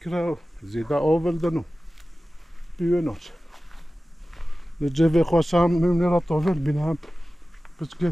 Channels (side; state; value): both; normal; correlation 0.96